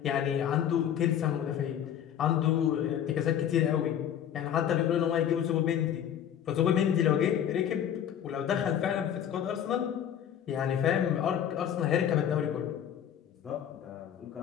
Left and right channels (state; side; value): quieter; right; 9.7 dB